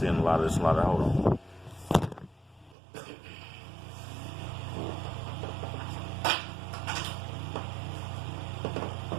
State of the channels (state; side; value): drops out; left; at 2.8 s